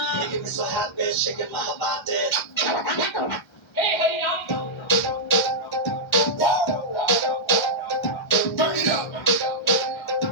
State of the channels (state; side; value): late; right; 1.3 ms